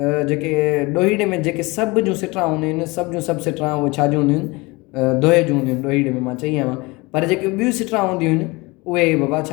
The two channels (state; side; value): quieter; right; 24.4 dB